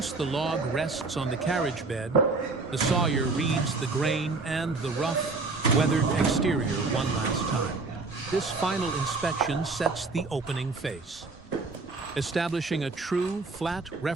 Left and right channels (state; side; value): quieter; left; 3.8 dB